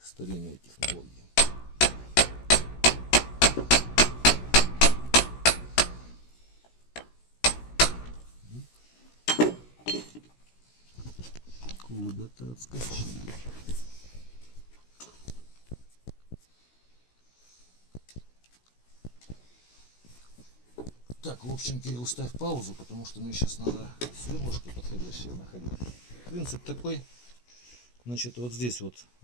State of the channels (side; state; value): right; late; 16 ms